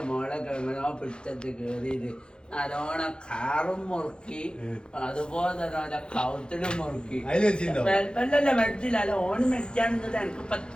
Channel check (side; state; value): right; late; 0.050 ms